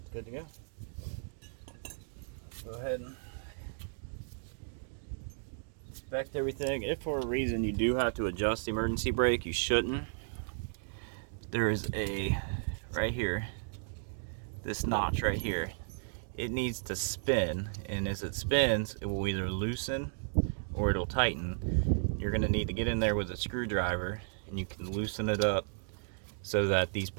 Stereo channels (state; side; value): silent; left; digital silence